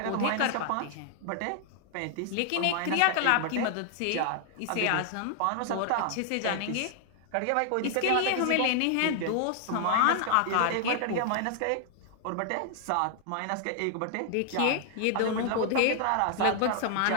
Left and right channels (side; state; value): both; different; correlation 0.00